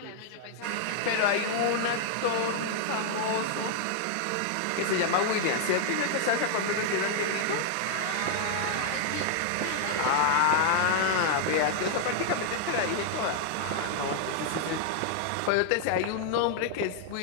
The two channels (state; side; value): different; both; correlation 0.00